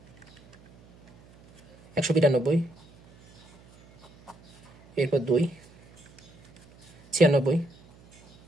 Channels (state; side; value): noise; right; hum, 27 dB below the sound